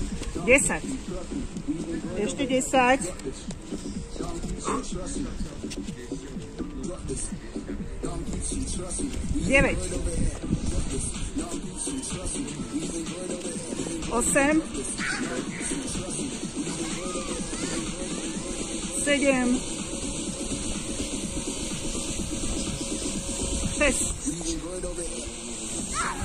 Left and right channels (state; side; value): identical; both; correlation 1.00